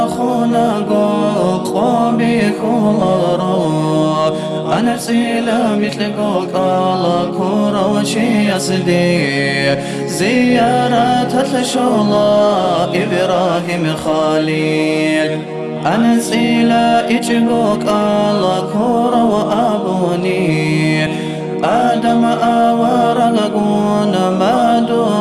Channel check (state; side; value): identical; both; correlation 1.00